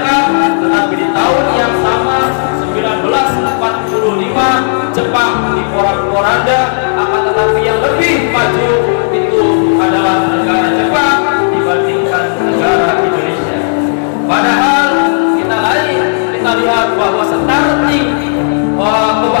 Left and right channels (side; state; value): right; silent; digital silence